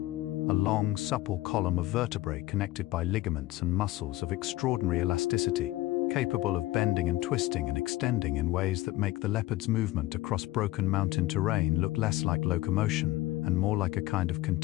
A long, supple column of vertebrae connected by ligaments and muscles of extraordinary elasticity, capable of bending and twisting and extending in ways that make the leopard's movement across broken mountain terrain look less like locomotion and more like a kind of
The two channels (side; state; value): right; quieter; 17.4 dB